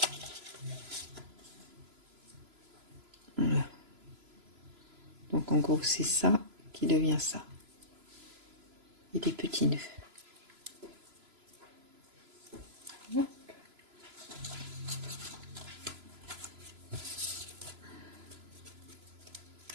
Voilà. Donc en gros c'est ça qui devient ça. Et des petits nœuds.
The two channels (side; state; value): left; late; 3.0 ms